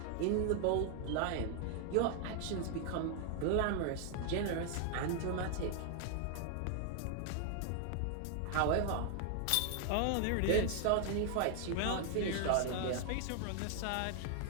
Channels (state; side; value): different; both; correlation 0.00